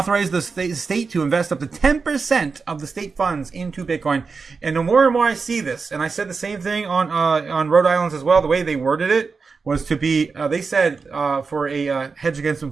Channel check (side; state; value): left; quieter; 4.8 dB